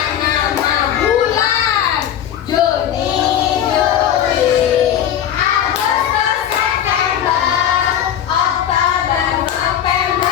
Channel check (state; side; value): quieter; right; 10.0 dB